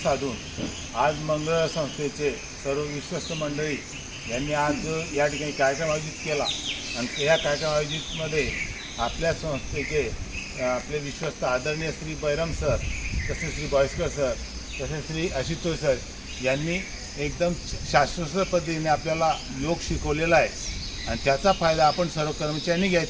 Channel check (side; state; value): both; identical; correlation 1.00